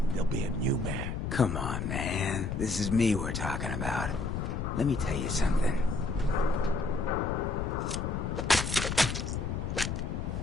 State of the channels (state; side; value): noise; left; rumble, 2 dB below the sound